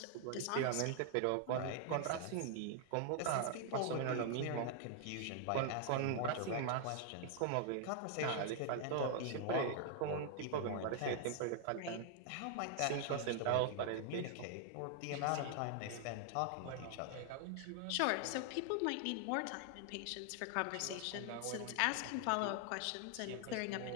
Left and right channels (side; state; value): both; different; correlation 0.00